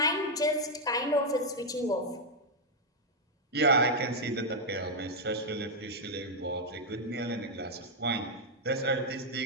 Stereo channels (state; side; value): normal; both; correlation -0.01